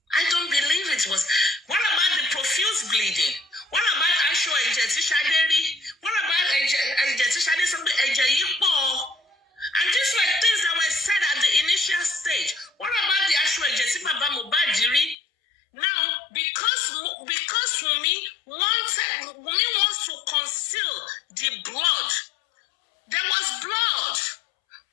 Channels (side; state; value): right; drops out; at 15.2 s